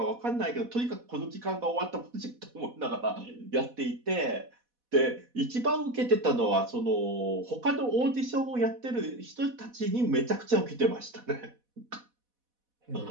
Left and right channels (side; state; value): left; late; 4.1 ms